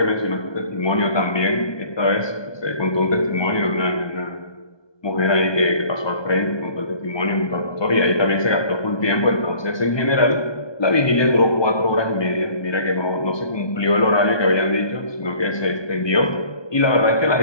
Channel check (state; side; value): late; right; 1.2 ms